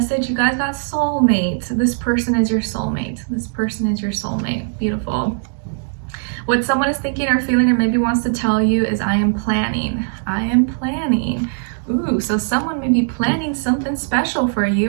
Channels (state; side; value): silent; left; digital silence